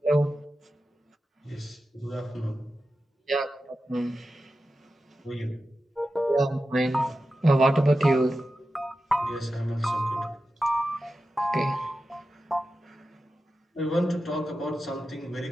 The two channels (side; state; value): both; normal; correlation 0.92